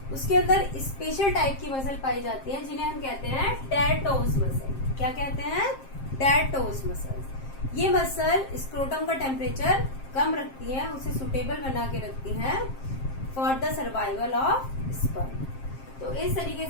उसके अंदर स्पेशल टाइप की मसल पाई जाती है जिन्हें हम कहते हैं टैटोस मसल। क्या कहते हैं? Tattoos muscle. ये मसल स्क्रोटम का टेम्परेचर कम रखती है, उसे सुटेबल बना के रखती है for the survival of sperm. तो इस तरीके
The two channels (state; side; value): late; right; 7.5 ms